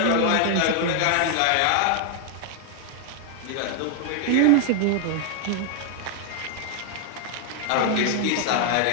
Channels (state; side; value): different; both; correlation 0.00